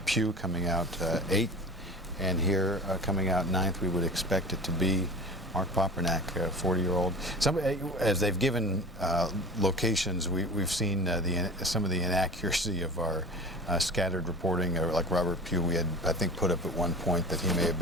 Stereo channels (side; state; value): both; normal; correlation 0.36